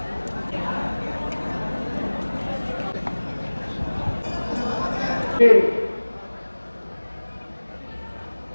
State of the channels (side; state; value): both; inverted; correlation -1.00